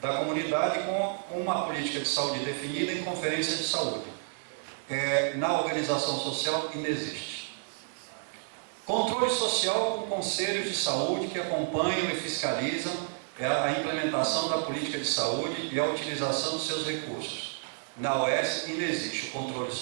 comunidade com uma política de saúde definida em conferência de saúde. Na organização social, ainda existe. Controle social com conselhos de saúde que acompanham e fiscalizam a implementação da política de saúde e a utilização dos seus recursos. Na OS ainda existe o controle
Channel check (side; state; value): left; silent; digital silence